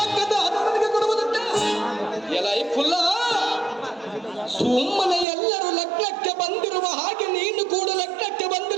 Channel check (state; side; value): drops out; left; at 5.2 s